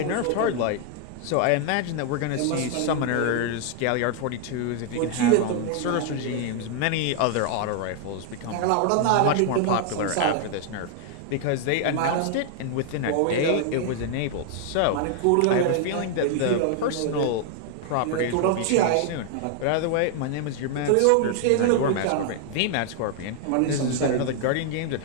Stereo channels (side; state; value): both; different; correlation 0.00